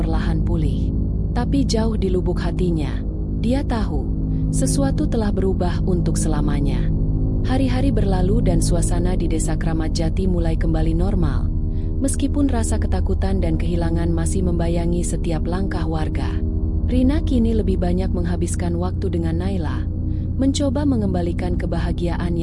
pulih. Tapi jauh di lubuk hatinya, dia tahu sesuatu telah berubah untuk selamanya. Hari-hari berlalu dan suasana di Desa Kramat Jati mulai kembali normal, meskipun rasa ketakutan dan kehilangan masih membayangi setiap langkah warga. Rina kini lebih banyak menghabiskan waktu dengan Naila, mencoba mengembalikan kebahagiaan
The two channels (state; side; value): identical; both; correlation 1.00